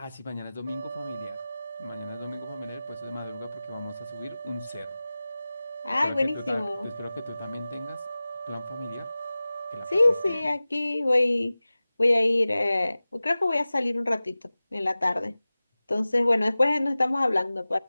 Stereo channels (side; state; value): both; inverted; correlation -0.97